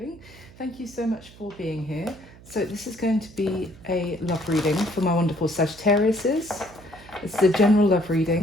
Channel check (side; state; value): right; noise; hum, 21 dB below the sound